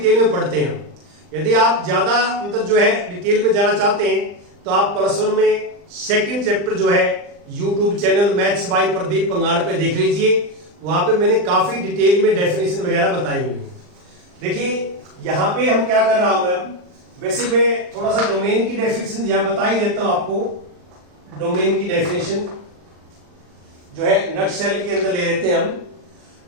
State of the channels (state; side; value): late; left; 39 ms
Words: में पढ़ते हैं हम। यदि आप ज्यादा मतलब जो है डिटेल में जाना चाहते हैं तो आप +1 में सेकंड चैप्टर जो है YouTube channel maths by Pradeep Pangad पे देख लीजिए। वहां पे मैंने काफी डिटेल में डेफिनेशन वगैरह बताई हुई है। देखिए यहां पे हम क्या कर रहा हूं मैं, वैसे मैं थोड़ा सा डोमेन की डेफिनेशन यहां बता ही देता हूं आपको। डोमेन की डेफिनेशन जो है नटशेल के अंदर ले लेते हैं हम।